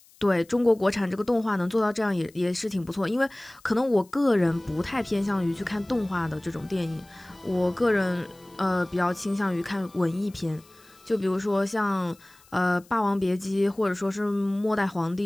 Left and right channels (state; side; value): noise; left; hiss, 28 dB below the sound